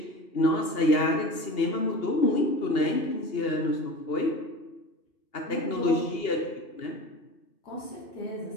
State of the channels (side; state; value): right; late; 2.8 ms